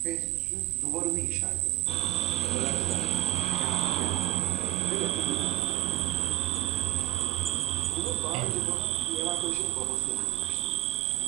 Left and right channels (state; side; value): quieter; left; 16.6 dB